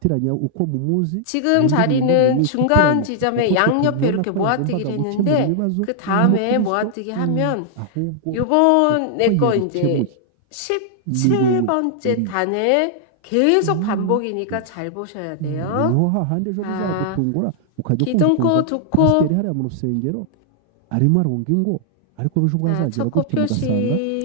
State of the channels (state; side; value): different; both; correlation -0.01